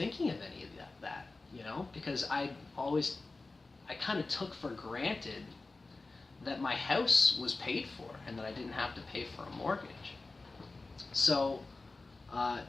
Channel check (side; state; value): right; quieter; 3.5 dB